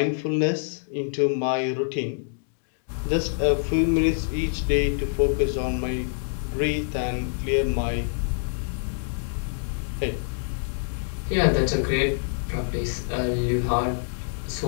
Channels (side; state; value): right; silent; digital silence